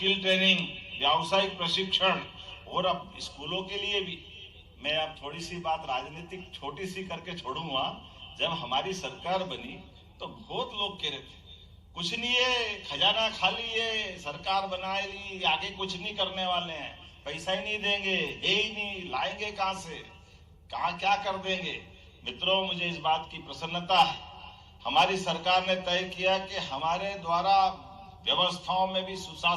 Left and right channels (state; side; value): identical; both; correlation 1.00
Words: ट्रेनिंग, व्यावसायिक प्रशिक्षण, और अब स्कूलों के लिए भी। मैं अब थोड़ी सी बात राजनीतिक छोटी सी करके छोड़ूंगा। जब हमारी सरकार बनी तो बहुत लोग कह रहे थे कुछ नहीं है, खजाना खाली है, सरकार बना ली, आगे कुछ नहीं करने वाले हैं, पैसा ही नहीं देंगे, है ही नहीं, लाएंगे कहां से, कहां क्या कर देंगे। मित्रों, मुझे इस बात की प्रसन्नता है, हमारी सरकार ने तय किया कि हमारे द्वारा व्यवस्थाओं में भी